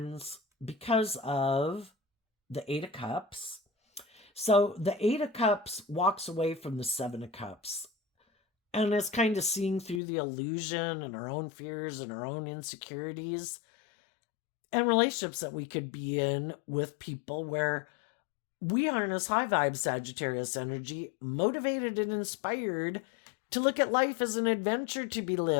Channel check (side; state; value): right; drops out; at 10.0 s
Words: because of the Eight of Cups. So the Eight of Cups walks away from the Seven of Cups and is kind of seeing through the illusion and our own fears and our own insecurities and relationships that we could be in with people where we harness high vibe Sagittarius energy, motivated and inspired to look at life as an adventure to be